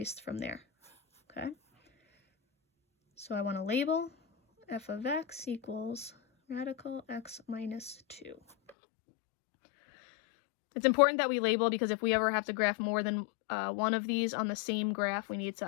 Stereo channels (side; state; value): right; drops out; at 8.7 s